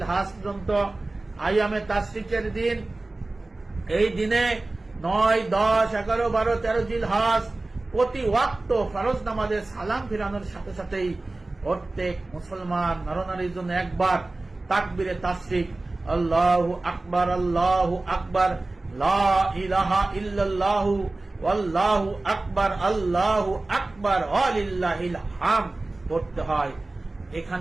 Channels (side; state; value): left; quieter; 3.0 dB